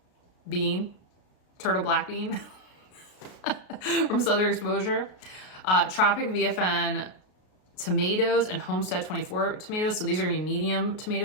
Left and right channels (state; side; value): late; right; 33 ms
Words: black bean from Southern Exposure, Tropic VFN tomatoes and Homestead 24 tomatoes. So these are gonna be medium